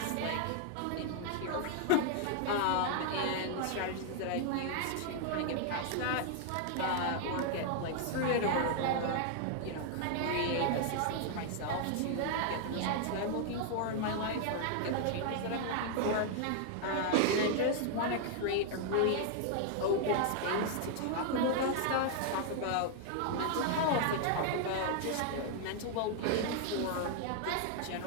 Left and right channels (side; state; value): both; different; correlation 0.00